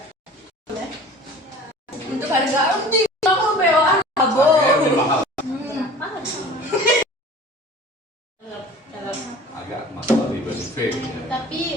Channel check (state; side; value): normal; both; correlation 0.43